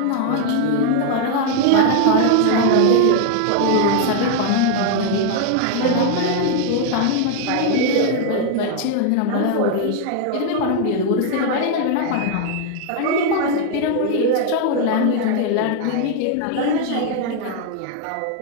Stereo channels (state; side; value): different; both; correlation 0.00